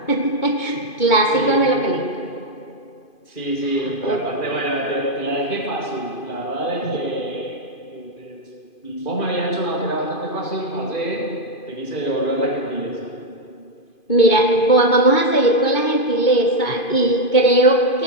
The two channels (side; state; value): right; late; 2.5 ms